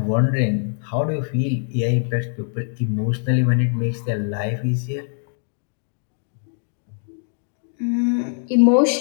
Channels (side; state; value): right; silent; 64 dB below the other